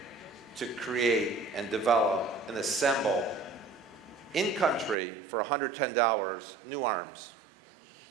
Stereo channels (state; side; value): drops out; left; at 5.0 s